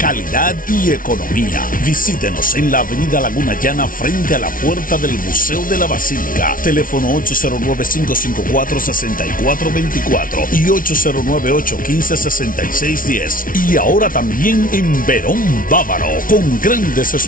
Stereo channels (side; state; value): right; late; 0.39 ms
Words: y economía. Visítenos en la avenida Laguna Llana frente a la puerta del Museo de la Basílica. Teléfono 809-554-6424 y 809-815-6610. Y ahora también en Verón Bávaro, con grandes